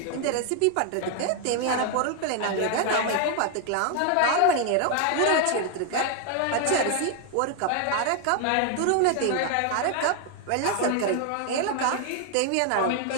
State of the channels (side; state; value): both; different; correlation 0.01